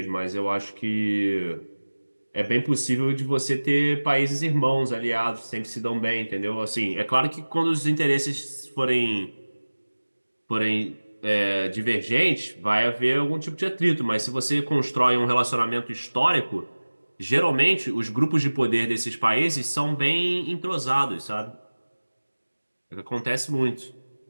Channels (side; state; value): both; inverted; correlation -1.00